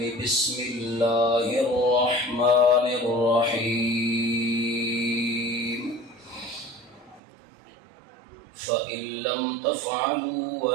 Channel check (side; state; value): left; drops out; at 7.2 s